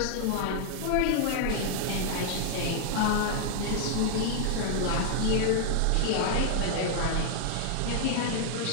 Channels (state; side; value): different; both; correlation -0.01